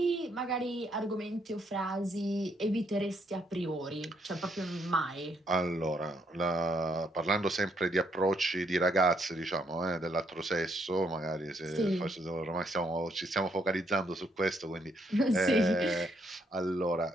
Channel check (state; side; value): normal; both; correlation 0.72